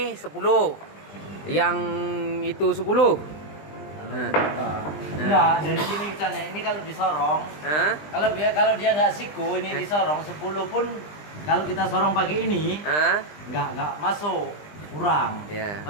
10. Yang itu 10. Nah. Enggak, dari sini misalnya ini kalau disorong, Hah? kalau dia nggak siku, ini disorong 10 pun kalau kita sorong pakai ini Hah? nggak masuk, kurang. Ya.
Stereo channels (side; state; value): right; late; 20 ms